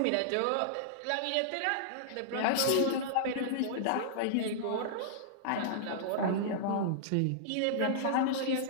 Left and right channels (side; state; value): both; different; correlation -0.02